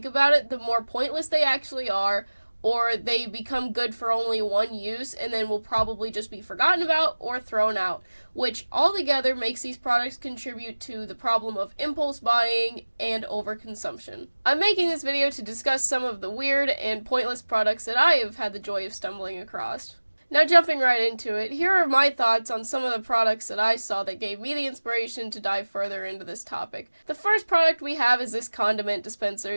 about it, the more pointless they actually are, or they become good for only one use and then will probably just be forgotten about or thrown out, which altogether makes these products contribute to the problem of impulse buying and overconsumption. I'm making this video to discuss some of the weird and pointless products that I have had the joy of stumbling across. Now, jumping right into it, here are my thoughts on some of the products that I saw that gave me the inspiration to dive further into this topic. The first product we have is this condiment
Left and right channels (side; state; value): both; inverted; correlation -1.00